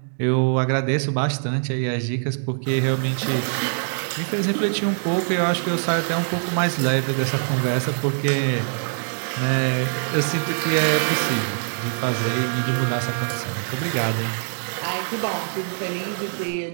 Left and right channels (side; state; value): left; silent; digital silence